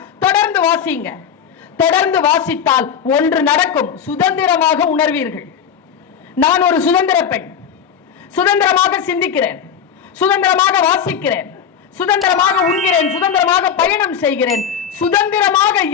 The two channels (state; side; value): quieter; right; 7.9 dB